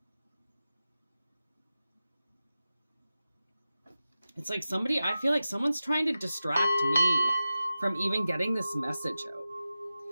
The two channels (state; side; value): inverted; both; correlation -0.94